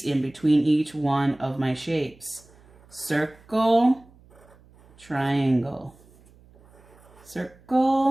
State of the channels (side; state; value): right; noise; hum, 27 dB below the sound